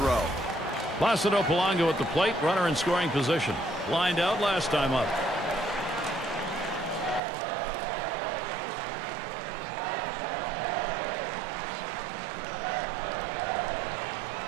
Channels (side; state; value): left; drops out; at 7.2 s